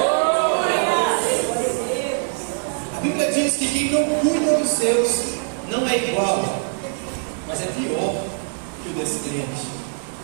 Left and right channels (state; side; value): silent; left; 60 dB below the other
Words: A Bíblia diz que quem não cuida dos seus não é igual, mas é pior que o descrente.